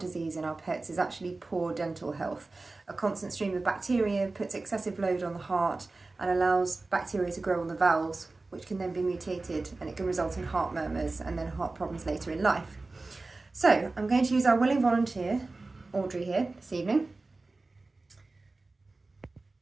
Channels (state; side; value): quieter; left; 3.4 dB